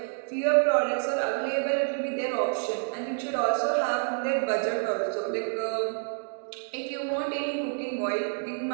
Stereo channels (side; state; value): left; silent; digital silence